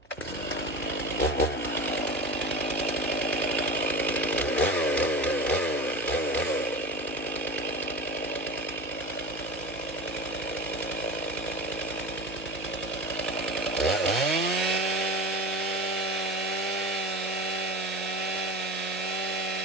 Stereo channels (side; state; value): both; normal; correlation 0.30